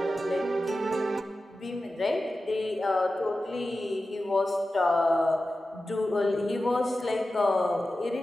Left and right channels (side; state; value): both; normal; correlation 0.93